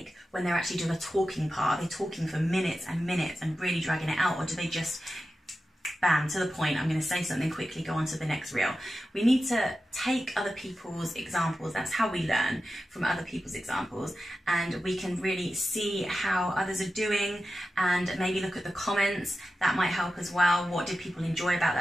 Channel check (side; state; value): both; normal; correlation 0.92